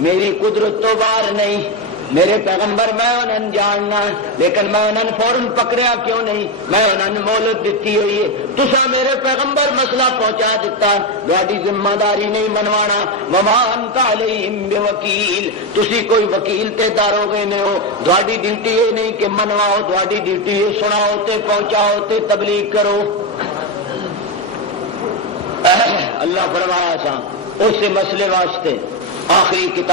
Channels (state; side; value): normal; both; correlation 0.10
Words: میری قدرت تو باہر نہیں. میرے پیغمبر میں انہوں جاننا لیکن میں انہوں فوراً پکڑیا کیوں نہیں؟ میں انہوں مہلت دیتی ہوئی ہے. تسا میرے پیغمبر مسئلہ پہنچا دیتا، تہاڈی ذمہ داری نہیں منوانا. وما انت علیہم بوکیل. تسی کوئی وکیل تے دارو گے نہیں ہو، تہاڈی ڈیوٹی یہ نہیں کہ منواؤ، تہاڈی ڈیوٹی یہ سناؤ تے پہنچاؤ تے تبلیغ کرو. اللہ فرمایا سا اس مسئلے واسطے آخری